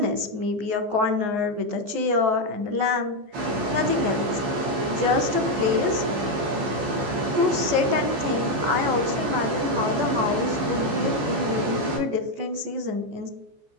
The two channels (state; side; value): late; left; 14 ms